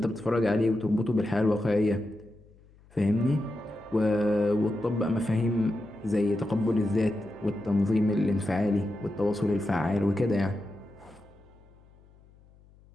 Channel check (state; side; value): noise; left; hum, 27 dB below the sound